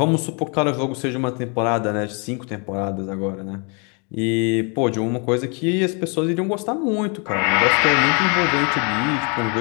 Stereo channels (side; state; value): right; quieter; 34.7 dB